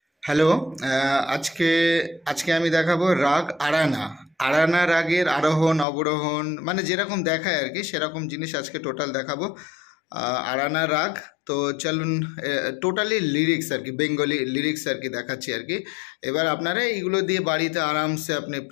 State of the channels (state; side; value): drops out; right; at 5.9 s